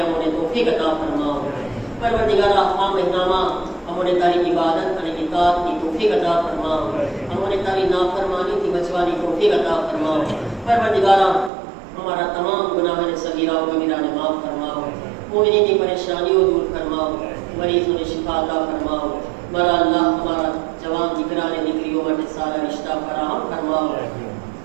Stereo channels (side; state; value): left; drops out; at 11.5 s